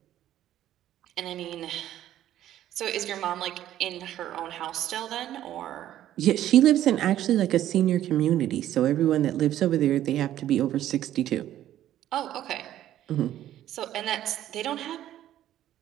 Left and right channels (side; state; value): left; quieter; 12.4 dB